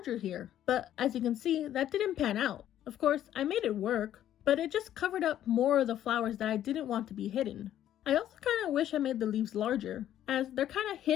here. But as you can see, that didn't pan out. Of course, I made it work, but it just covered up more of the flowers that I didn't want to be hidden. I also kind of wish I made the leaves larger, as they're kind of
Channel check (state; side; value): quieter; right; 11.6 dB